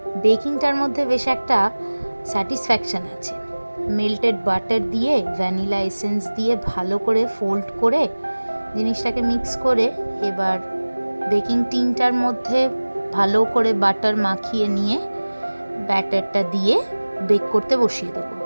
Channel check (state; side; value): inverted; both; correlation -1.00